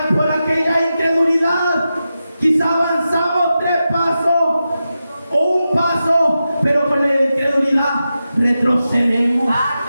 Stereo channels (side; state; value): both; inverted; correlation -0.91